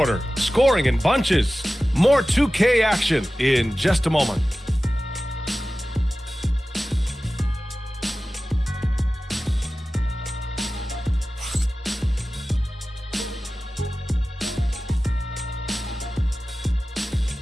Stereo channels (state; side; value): normal; both; correlation 0.96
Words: scoring in bunches. More 2K action in just a moment.